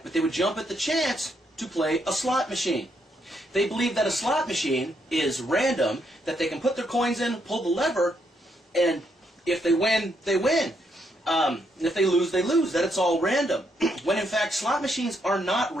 but they would jump at the chance to play a slot machine. They believe that a slot machine is random, that they can put their coins in, pull the lever, and if they win, they win. And if they lose, that it's all random. When in fact, slot machines are not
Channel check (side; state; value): both; normal; correlation 0.76